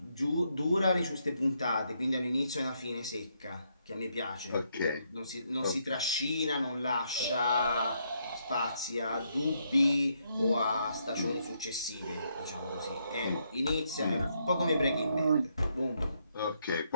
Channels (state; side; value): inverted; both; correlation -0.76